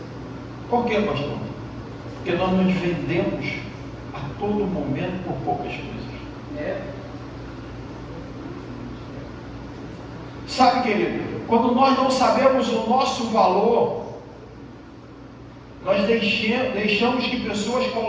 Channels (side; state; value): both; identical; correlation 1.00